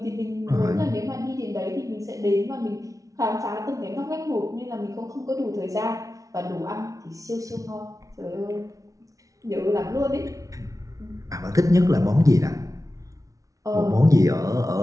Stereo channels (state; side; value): late; left; 0.17 ms